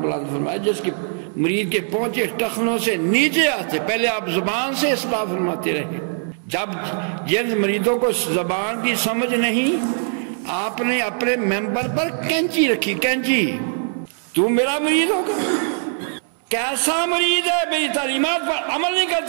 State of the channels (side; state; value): left; silent; 65 dB below the other